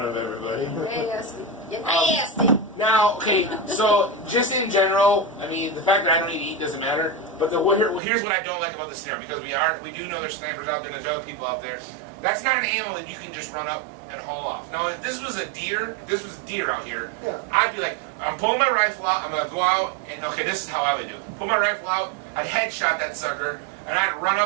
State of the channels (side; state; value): left; drops out; at 8.0 s